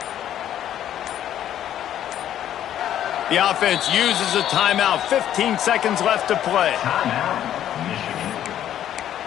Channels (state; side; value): quieter; right; 11.1 dB